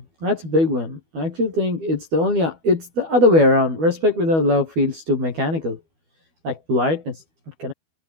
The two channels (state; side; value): late; left; 12 ms